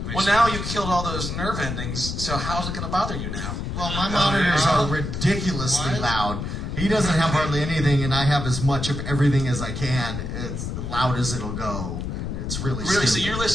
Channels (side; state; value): left; noise; rumble, 4 dB below the sound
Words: Well, now you killed all those nerve endings, so how's it going to bother you now? Well, my monitors are ridiculously loud. He doesn't have hardly anything, and I have as much of everything as I can, as loud as it'll go. And it's really so stupid. you're